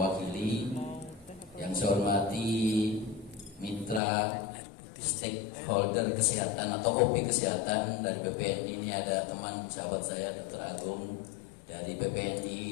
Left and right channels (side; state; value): right; drops out; at 4.0 s